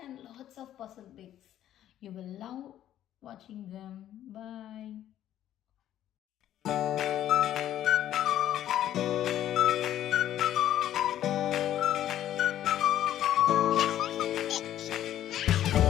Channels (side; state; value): right; quieter; 11.9 dB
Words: lots of puzzle bits. You will love watching them. Bye.